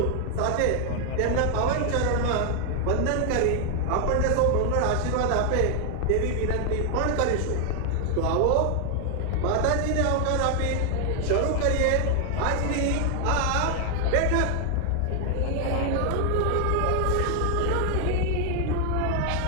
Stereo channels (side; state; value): both; different; correlation 0.00